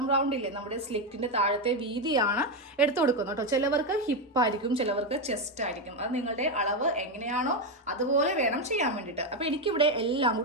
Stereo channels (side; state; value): both; normal; correlation 0.08